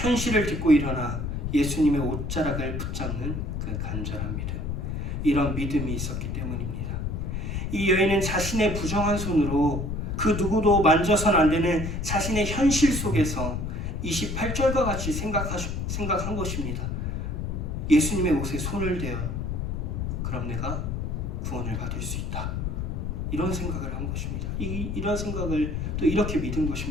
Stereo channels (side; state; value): left; noise; rumble, 3 dB below the sound